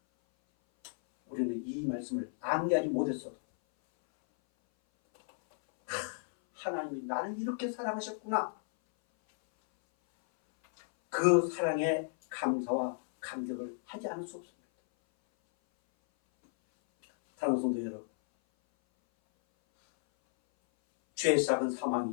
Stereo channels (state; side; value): silent; right; 56 dB below the other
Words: 우리는 이 말씀을 암기하지 못했어도 하나님이 나를 이렇게 사랑하셨구나. 그 사랑에 감사와 감격을 하지 않을 수 없습니다. 사랑하는 성도 여러분, 죄의 싹은